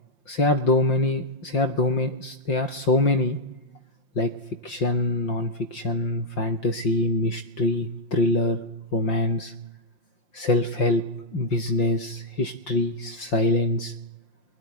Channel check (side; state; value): right; late; 5.7 ms